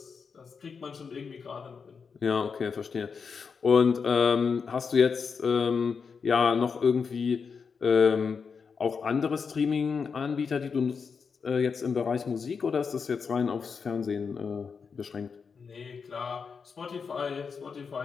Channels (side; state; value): right; quieter; 5.7 dB